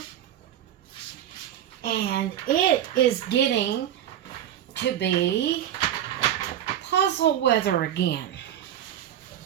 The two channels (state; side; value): quieter; left; 11.1 dB